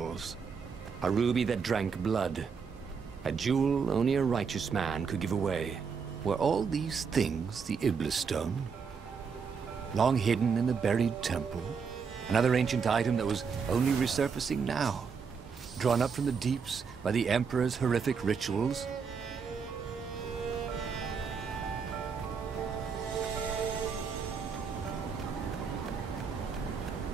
a ruby that drank blood, a jewel only a righteous man could give away. Were all these things the Iblis Stone? Long hidden in a buried temple? Another ancient item that was only resurfacing now? Drawn up from the deeps by the Emperor's horrific rituals?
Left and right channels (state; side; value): quieter; left; 5.9 dB